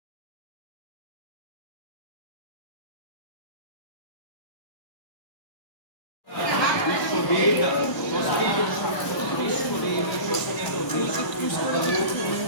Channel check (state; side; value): late; right; 1.0 ms